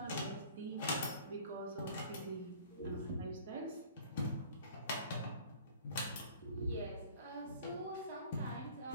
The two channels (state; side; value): inverted; both; correlation -0.48